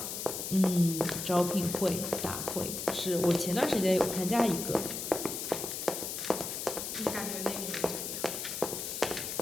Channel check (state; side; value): noise; left; hiss, 5 dB below the sound